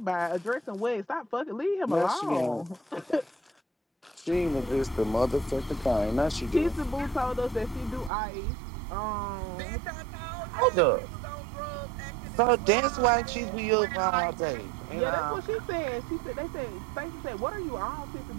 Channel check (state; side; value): drops out; left; at 8.1 s